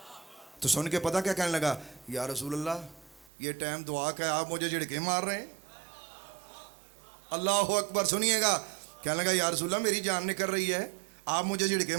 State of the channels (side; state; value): left; drops out; at 3.3 s